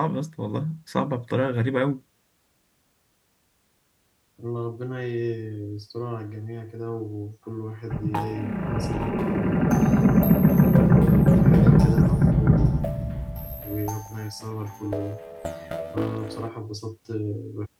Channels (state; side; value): identical; both; correlation 1.00